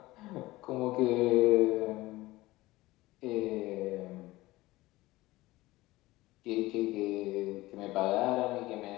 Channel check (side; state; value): right; quieter; 18.8 dB